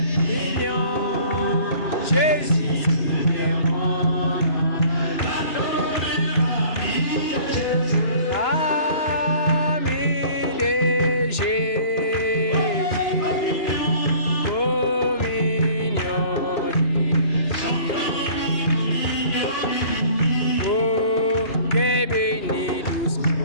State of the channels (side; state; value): right; late; 2.9 ms